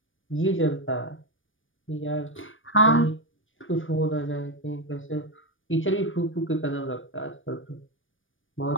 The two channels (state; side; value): late; right; 0.57 ms